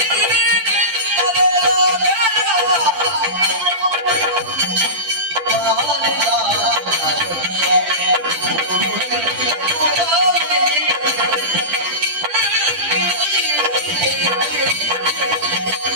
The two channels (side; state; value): left; late; 10 ms